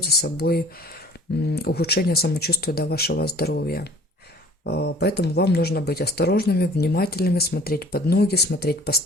за собой ухудшение самочувствия до вашего здоровья. Поэтому вам нужно быть осторожными, внимательными, смотреть под ноги, смотреть по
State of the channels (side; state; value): both; normal; correlation 0.50